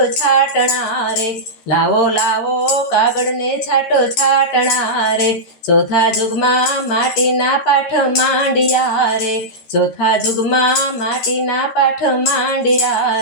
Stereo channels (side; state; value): right; late; 13 ms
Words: છાંટણા રે, લાવો લાવો કાગળને છાંટો છાંટણા રે, ચોથા જુગમાં માટીના પાઠ માંડ્યા રે, ચોથા જુગમાં માટીના પાઠ